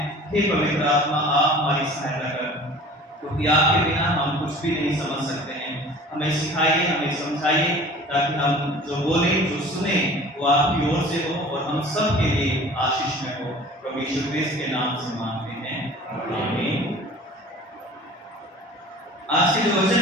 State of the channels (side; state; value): both; normal; correlation 0.44